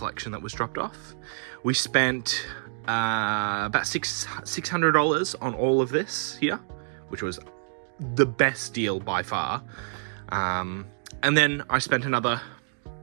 that was dropped off. We spent about $600 on all of this here, which was the best deal by far. And then I spent another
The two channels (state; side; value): silent; left; digital silence